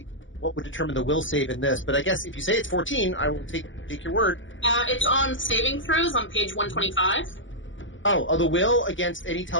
what would determine the will save in this, but I guess if you say it's 14, I will take your word. It's on saving throws on page 125. Oh, the will against any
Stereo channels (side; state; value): right; late; 0.56 ms